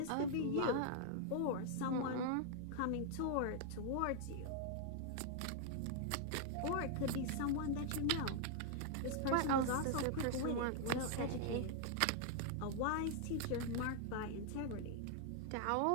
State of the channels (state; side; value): different; both; correlation 0.00